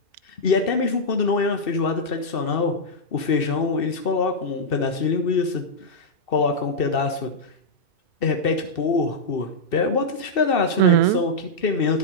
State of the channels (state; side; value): late; right; 2.7 ms